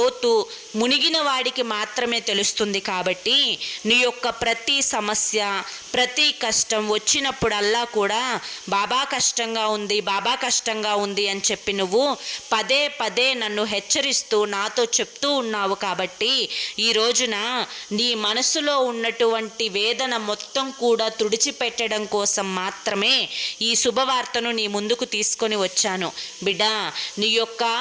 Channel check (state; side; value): identical; both; correlation 1.00